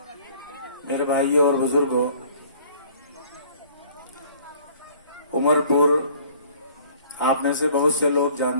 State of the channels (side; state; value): both; inverted; correlation -0.53